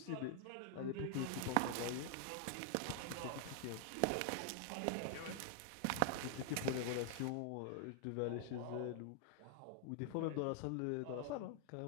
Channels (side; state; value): both; different; correlation 0.00